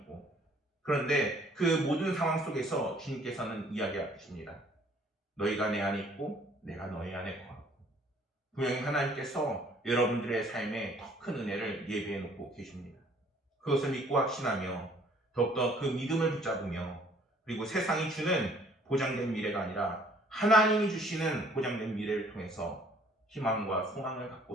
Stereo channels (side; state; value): both; normal; correlation 0.59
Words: 그런데 그 모든 상황 속에서 주님께서는 이야기하십니다. 너희가 내 안에 있고 내가 너희 안에 거하고. 분명히 하나님께서 여러분들의 삶에 더 큰 은혜를 예비해 놓고 계십니다. 그것을 믿고 확신하며 더욱더 그 믿음을 붙잡으며, 그리고 세상이 주는 보장된 미래가 아니라 하나님이 주시는 보장된 미래를 통해서 희망과 소망을 갖고